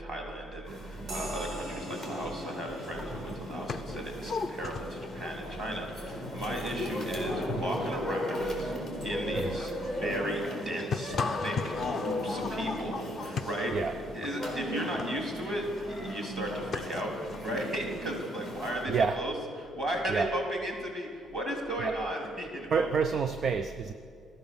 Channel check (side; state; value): both; normal; correlation 0.69